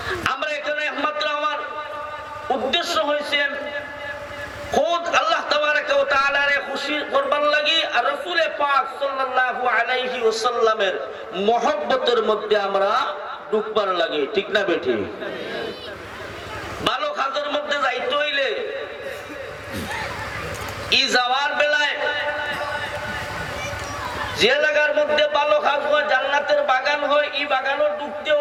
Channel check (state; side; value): identical; both; correlation 1.00